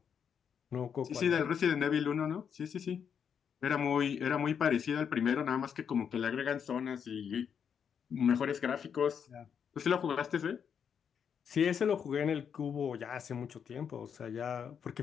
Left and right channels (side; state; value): right; quieter; 7.5 dB